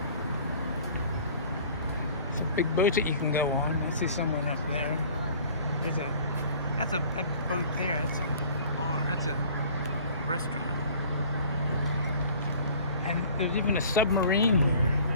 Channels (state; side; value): inverted; both; correlation -0.49